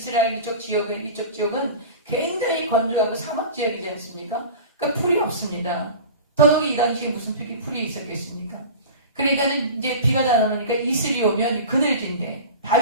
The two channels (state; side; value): inverted; both; correlation -0.34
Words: 이쪽 지역은 굉장히 건조하고 사막 지역이지 않습니까? 그러니까 풀이 없습니다. 더더욱 이 당시에 무슨 풀이 있었겠습니까? 그러니까는 이제 비가 잘 안 오니까 이슬이 오면 그늘진데,